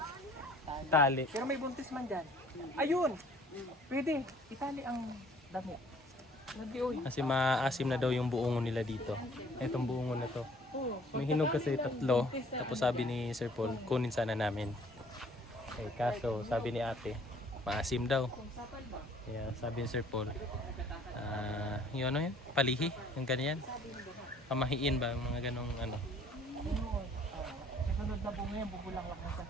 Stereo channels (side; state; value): both; normal; correlation 0.56